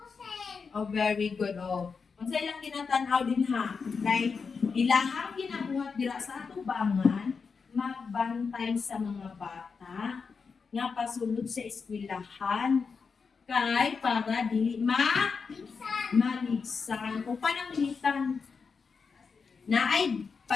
Very good. Unsay lang ginatanaw din ha? Like, ilahang ginabuhat dira sa atubangan, magbantay sa mga bata, nga pasulod sa eskwelahan, kay para dili maligsan. O pananglitan, na ay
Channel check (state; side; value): quieter; right; 5.3 dB